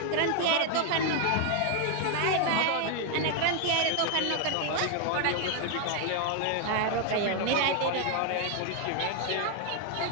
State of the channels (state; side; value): different; both; correlation 0.00